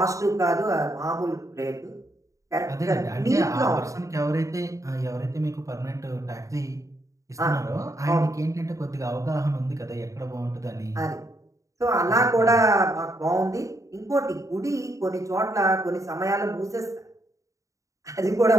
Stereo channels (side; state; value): left; late; 0.16 ms